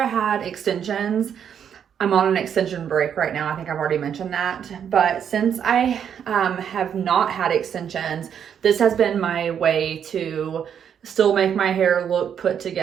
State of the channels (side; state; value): left; quieter; 8.3 dB